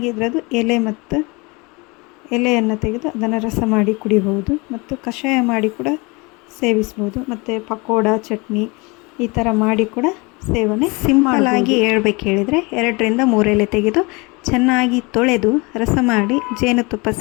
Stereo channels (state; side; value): quieter; right; 27.0 dB